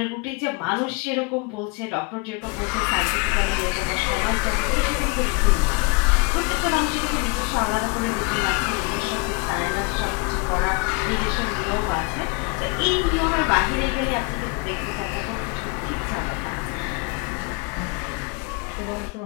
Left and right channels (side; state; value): right; quieter; 29.7 dB